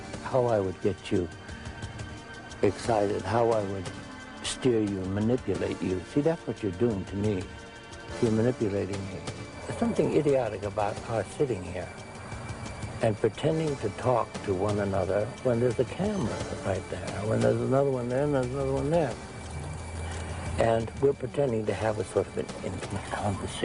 how I would get you excited, how I would steer you and manipulate you. See, that's what you're doing to me. You're manipulating me. There's something idiotic about our sitting here and pretending to talk to one another when there's a camera right there, when there's another one there and there's another one there. And we're pretending to have a sort of an intimate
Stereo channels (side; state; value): both; identical; correlation 1.00